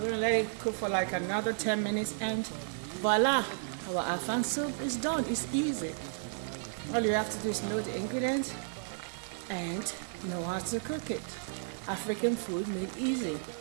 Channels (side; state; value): left; silent; digital silence